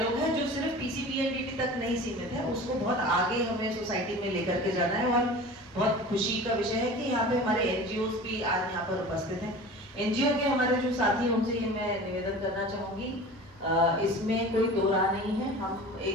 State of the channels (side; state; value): both; normal; correlation 0.38